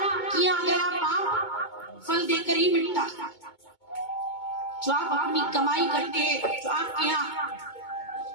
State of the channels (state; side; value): late; right; 2.2 ms